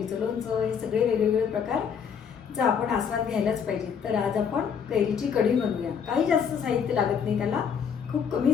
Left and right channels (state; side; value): quieter; right; 7.1 dB